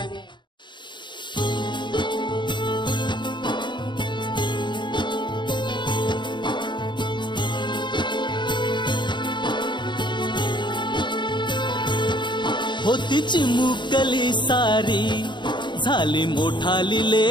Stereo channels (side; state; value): right; late; 0.22 ms